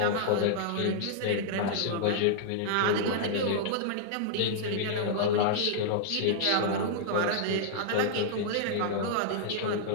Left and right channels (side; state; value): both; different; correlation -0.01